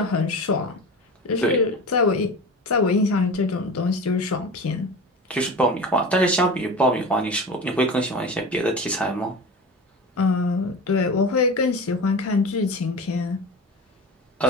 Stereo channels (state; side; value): normal; both; correlation 0.31